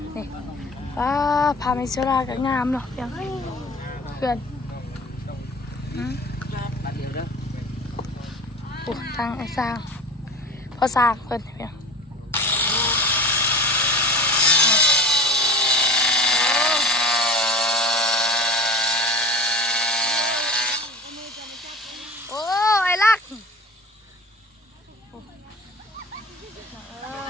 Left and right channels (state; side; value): normal; both; correlation 0.38